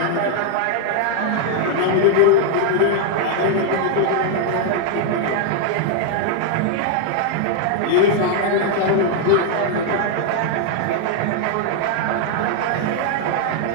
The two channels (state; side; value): different; both; correlation 0.00